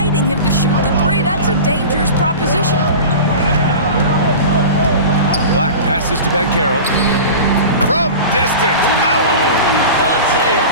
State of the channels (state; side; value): inverted; both; correlation -0.33